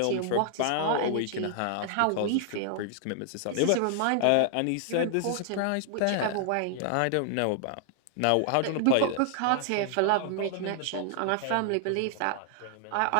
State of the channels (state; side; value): different; both; correlation 0.00